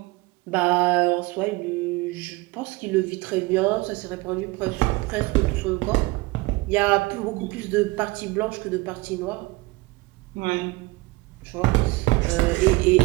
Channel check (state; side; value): quieter; left; 22.0 dB